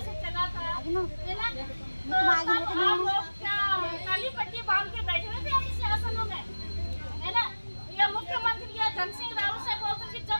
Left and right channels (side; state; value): both; inverted; correlation -1.00